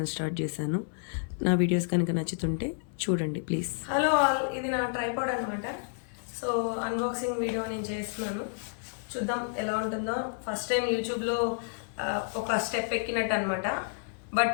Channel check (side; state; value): right; silent; 58 dB below the other